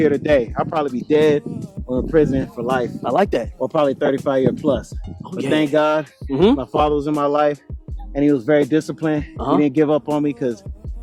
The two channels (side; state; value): both; identical; correlation 1.00